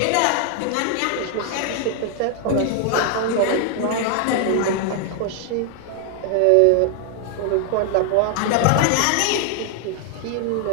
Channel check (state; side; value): different; both; correlation 0.00